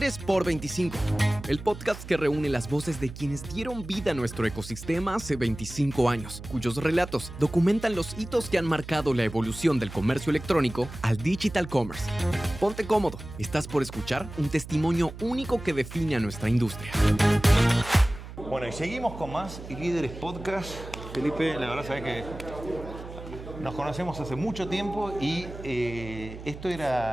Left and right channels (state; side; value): noise; right; hum, 12 dB below the sound